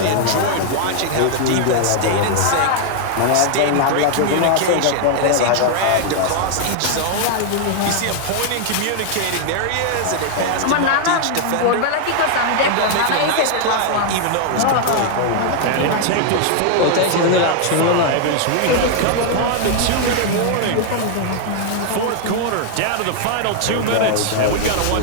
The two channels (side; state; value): both; different; correlation 0.00